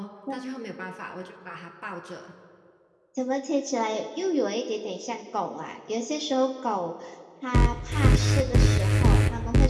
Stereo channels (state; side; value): identical; both; correlation 1.00